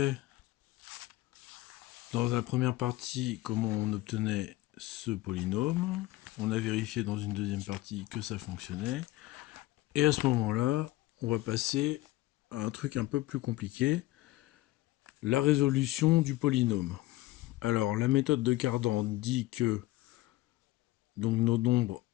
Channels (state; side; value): quieter; right; 17.7 dB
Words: dans la première partie comment on obtenait ce polynôme. On a vérifié dans une deuxième partie que ça fonctionnait. Et à ce moment-là, on va passer à un truc un peu plus compliqué, la résolution du polynôme. Alors la méthode de Cardan dit que donc nos nombres